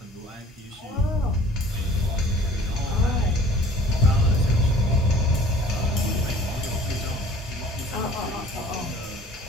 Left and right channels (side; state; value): both; normal; correlation 0.50